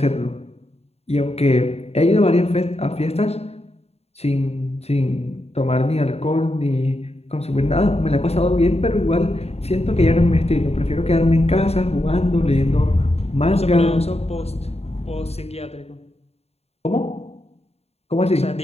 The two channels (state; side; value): late; right; 0.30 ms